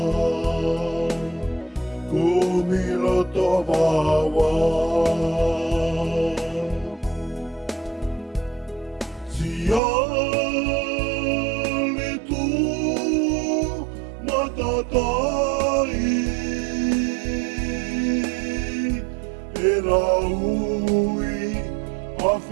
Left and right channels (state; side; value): drops out; left; at 9.8 s